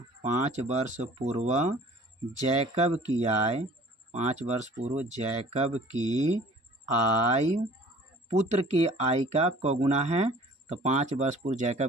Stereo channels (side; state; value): both; normal; correlation 0.49